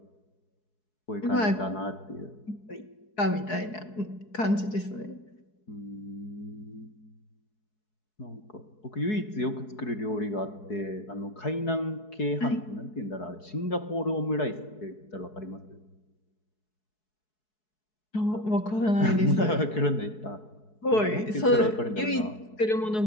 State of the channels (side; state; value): right; late; 4.7 ms